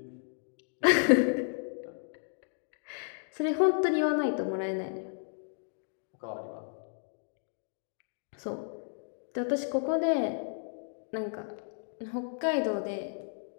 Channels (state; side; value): silent; right; digital silence